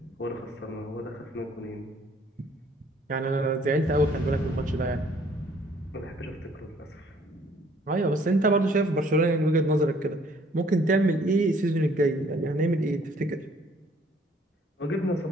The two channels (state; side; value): normal; both; correlation 0.60